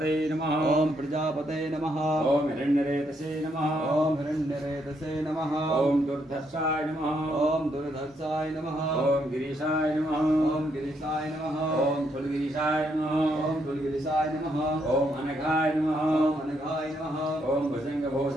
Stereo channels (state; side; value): normal; both; correlation 0.75